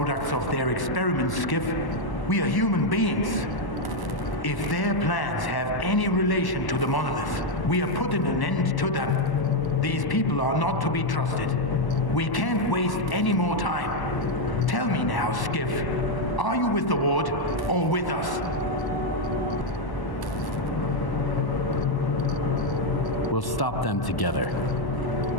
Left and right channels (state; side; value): late; right; 1.0 ms